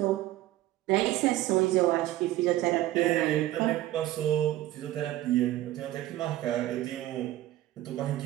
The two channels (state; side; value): quieter; left; 15.0 dB